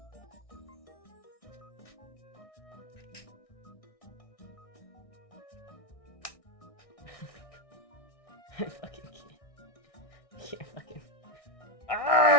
I fucking can't fucking.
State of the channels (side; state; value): right; late; 1.6 ms